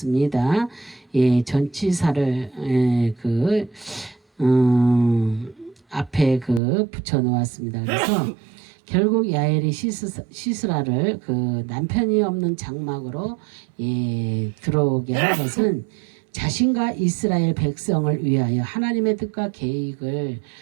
예, 전치사를 앞에 붙여 놓았습니다. 그래서 결국 야엘이 시스라를 그 남편이 없는 장막으로 들어오게 한 것은 자신과 이스라엘 백성을 위하여 하나님의 뜻과 계획을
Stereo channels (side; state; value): left; drops out; at 6.6 s